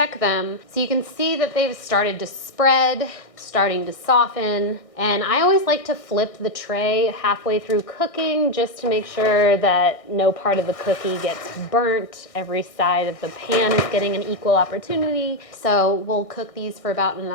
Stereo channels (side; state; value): right; late; 1.6 ms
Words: them. So you can see that they've started to spread, starting to soften, and I always like to flip the tray halfway through cooking just to make sure that no part of the cookie gets burnt. Every side of the pan is getting an equal opportunity. So we'll cook these for about